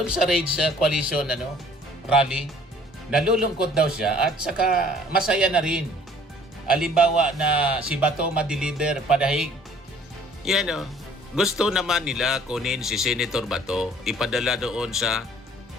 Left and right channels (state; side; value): normal; both; correlation 0.55